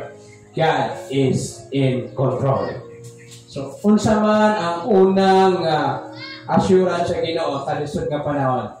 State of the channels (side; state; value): both; identical; correlation 1.00